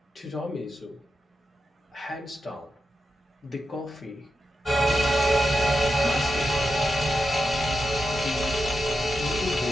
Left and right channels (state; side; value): normal; both; correlation 0.88